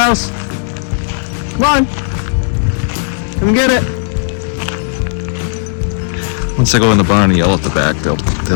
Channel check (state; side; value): silent; right; digital silence